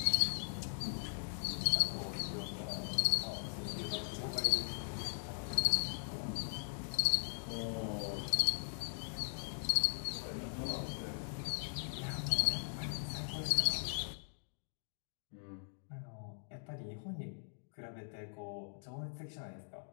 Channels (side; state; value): right; silent; digital silence